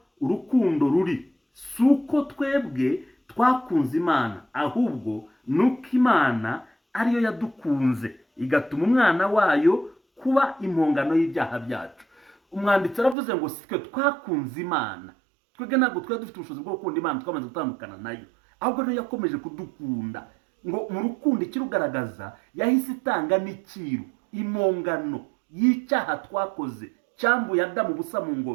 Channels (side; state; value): left; drops out; at 13.2 s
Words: urukundo ruri, suko twebwe twakunze Imana, ahubwo nuko Imana ariyo yadukunze igatuma umwana wayo kuba impongano y'ibyaha byacu. Umwanditsi aravuze ngo sitwe twakunze Imana, twebwe ntabwo twari dufite ubushobozi bwo gukunda Imana twamaze gutandukana nayo, ahubwo niyo yakomeje kudukunda. Ngo mu rukundo ikirugaragaza yahise itanga n'ikiru, impongano y'icyaha twakoze cyambuye Adamu ubusa mu